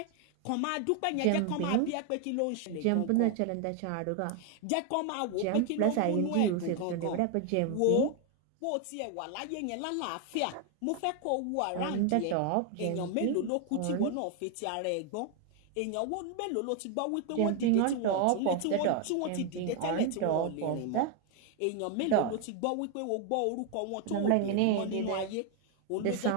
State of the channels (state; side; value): different; both; correlation 0.01